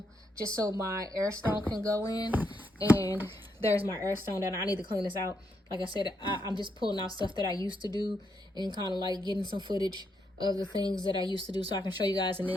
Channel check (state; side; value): normal; both; correlation 0.79